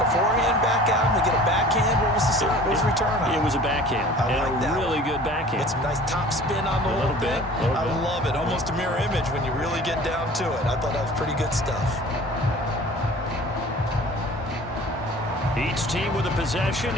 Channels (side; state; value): both; normal; correlation 0.45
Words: a forehand back out. They get a backhand. What was the return on? It was a backhand. I like that. Really good backhand. Get some nice top spin on the whole thing. I love it. Almost a mirror image when you really get down to it. I thought that was pretty good stuff. Each team with a possession,